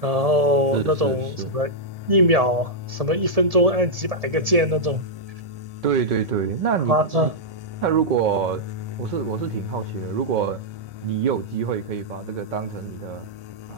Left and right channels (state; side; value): late; left; 1.2 ms